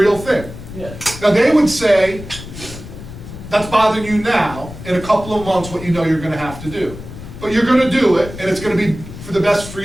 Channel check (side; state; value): left; noise; rumble, 13 dB below the sound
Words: thing. Yeah. Now they would say, that's bothering you now, in a couple of months what you know you're going to have to do. But you're going to do it, and it's going to be for the best for